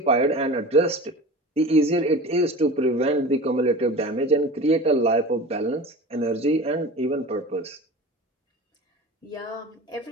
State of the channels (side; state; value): both; normal; correlation 0.35